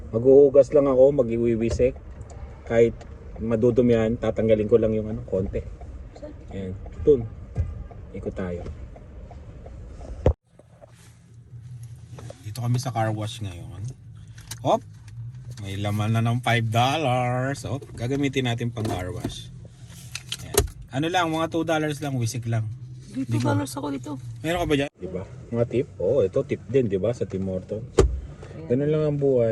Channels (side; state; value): both; identical; correlation 1.00